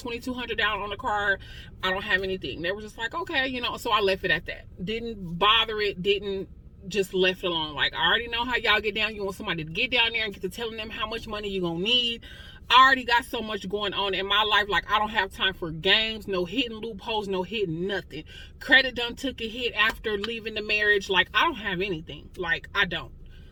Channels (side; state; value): both; identical; correlation 1.00